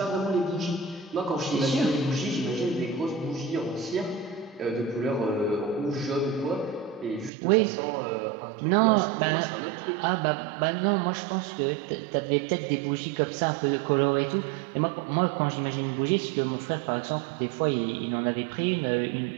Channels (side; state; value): left; drops out; at 7.3 s